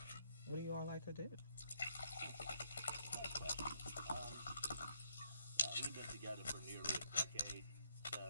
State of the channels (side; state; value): both; inverted; correlation -0.74